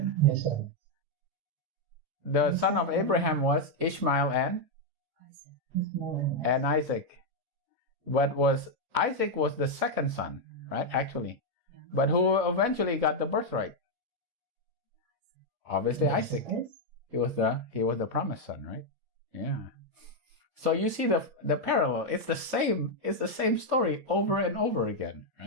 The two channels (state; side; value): late; left; 6.2 ms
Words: Yes, sir. The son of Abraham was Ishmael and Isaac. But Isaac was the second son, right? Actually. But who eventually got the birthright? Obviously Isaac. He was the promised son, right? Yeah. So you see the parallel. It's the same story over and over again,